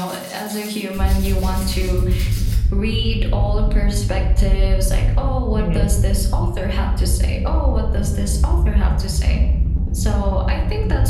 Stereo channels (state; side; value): identical; both; correlation 1.00